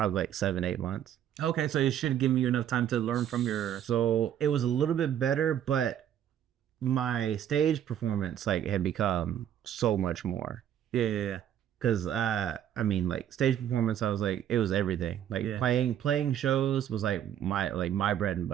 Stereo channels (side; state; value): left; quieter; 10.3 dB